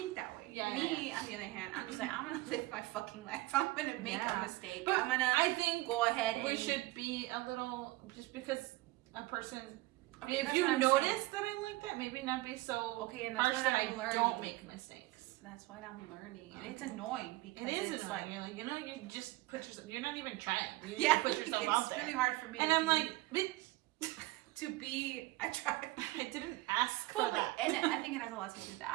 that way. Yeah. Me, on the other hand, I'm just like I'm gonna live my fucking life. I'm gonna make a mistake. But I'm gonna. I think go ahead. We should be a little just because a person. Okay, if you notice that I'm like that, maybe not be so and harsh that I don't make mistakes. That's what I'm learning, and it's annoying because it's annoying. You're like, you just put yourself. You're not even trying. You just put yourself out there. It's really hard for me. And I'm like, bitch, to be. I tried. I didn't ask for that. And I think it has a lot to do with that.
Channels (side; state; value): left; quieter; 20.0 dB